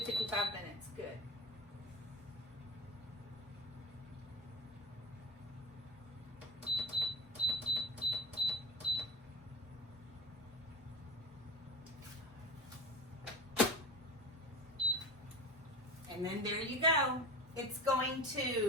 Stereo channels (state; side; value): normal; both; correlation 0.30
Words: 55 minutes. Good. And then there you go. It's going